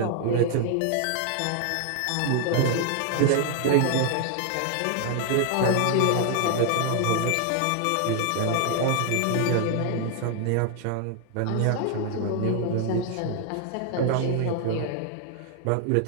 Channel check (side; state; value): both; different; correlation 0.00